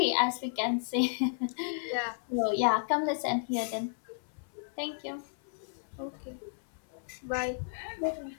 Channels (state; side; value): silent; right; 56 dB below the other